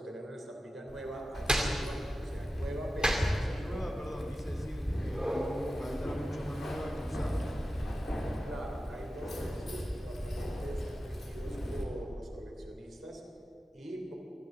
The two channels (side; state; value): both; normal; correlation 0.93